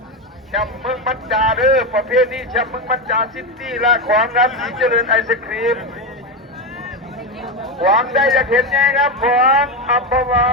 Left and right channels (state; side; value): normal; both; correlation 0.13